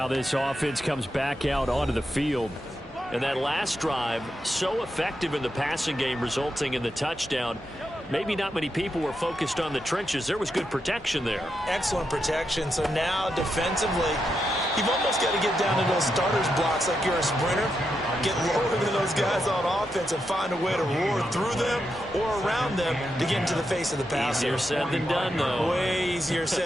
this offense comes back out onto the field. And that last drive, so effective in the passing game, resulting in the touchdown. Maybe not many people were focused on the trenches. There was good protection there. Excellent protection. So now defensively, you've almost got to get down to those starters blocks like you're a sprinter. Get lower than those guys on offense and find a way to roar through them or around them to get into the face of the passer. Easier said than done, though. Way easier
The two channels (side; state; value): both; normal; correlation 0.85